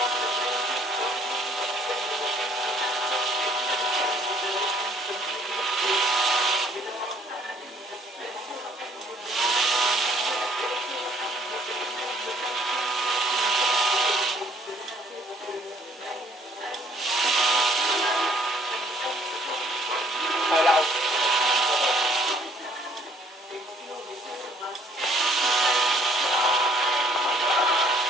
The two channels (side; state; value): both; normal; correlation 0.62